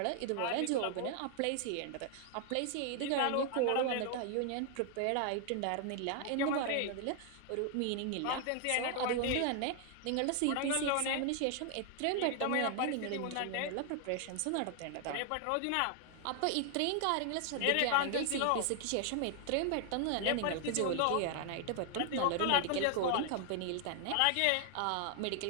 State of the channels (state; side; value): different; both; correlation 0.00